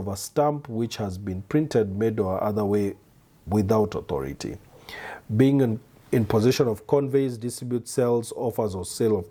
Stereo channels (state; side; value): identical; both; correlation 1.00